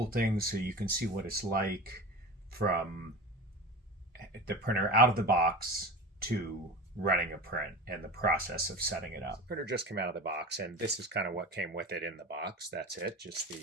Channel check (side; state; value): both; normal; correlation 0.31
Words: thing so you can see what it's like from the printer out of the box to running a print and the process of setting it up. The printer just came out of the box, and this is kind of what came with it in the box. That's it, just the